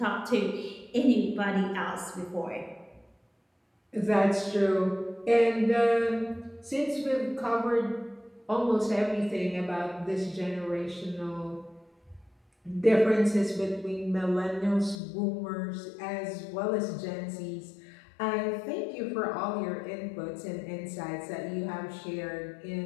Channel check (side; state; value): right; drops out; at 15.0 s